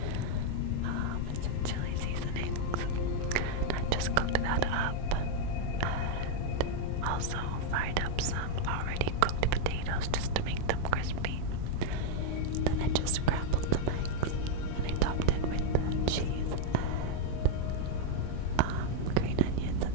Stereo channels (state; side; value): different; both; correlation 0.00